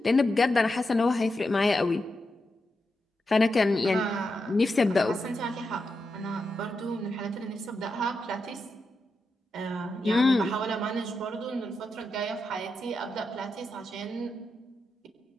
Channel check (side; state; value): both; normal; correlation 0.87